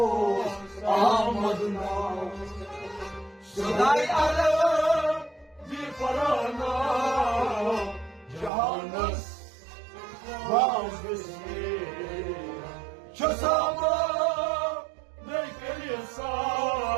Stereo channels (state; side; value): drops out; left; at 8.5 s